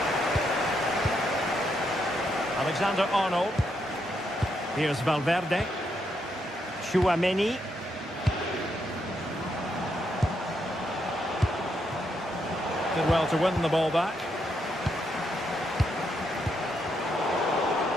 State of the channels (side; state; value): both; normal; correlation 0.79